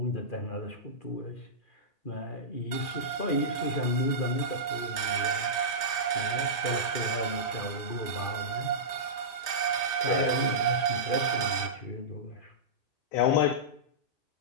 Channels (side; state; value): right; late; 1.8 ms